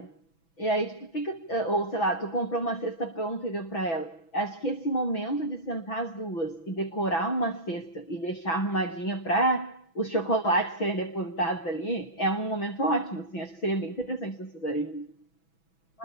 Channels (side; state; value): right; late; 6.1 ms